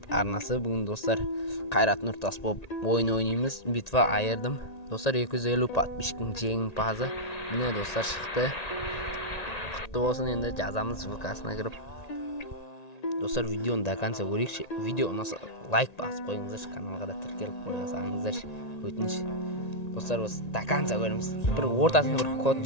arnasi. Bugun do'stlar Qayrat Nurtas bo'lib o'yin o'ynaymiz. Bitva ayirdim. Do'stlar 250 подписчиктning jengpazi mana do'stlar chiqdi. Qutlu bo'lsin. Endi jazamiz VK'sine kirib. Do'stlar videoni до конца ko'ring. Video unasa like bosib qo'yingizlar, kanalga da tirkelib qo'yasizlar. O'tinish. Do'stlar biz до конца ko'ramiz. Bir o'rtasida bir kod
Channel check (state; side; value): late; right; 1.9 ms